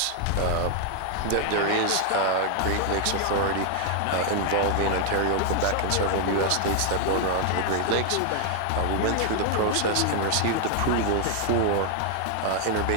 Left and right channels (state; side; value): different; both; correlation 0.00